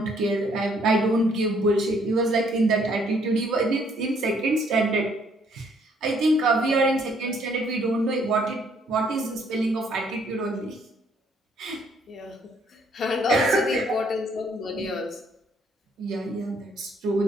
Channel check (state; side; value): normal; both; correlation 0.66